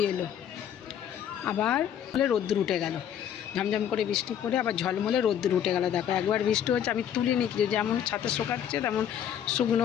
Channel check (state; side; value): quieter; right; 9.5 dB